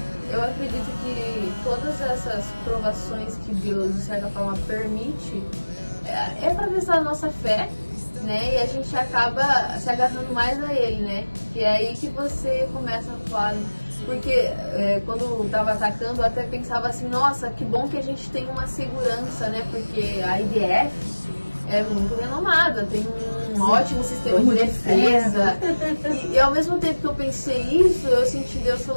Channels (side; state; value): both; inverted; correlation -1.00